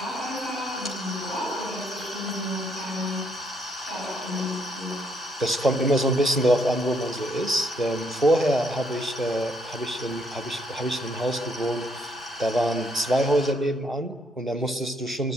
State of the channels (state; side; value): normal; both; correlation 0.71